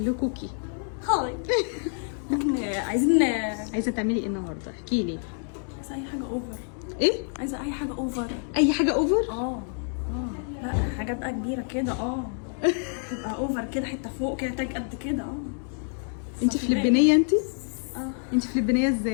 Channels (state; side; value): silent; right; 55 dB below the other